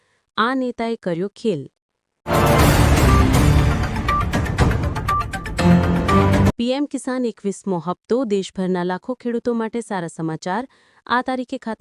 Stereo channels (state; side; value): identical; both; correlation 1.00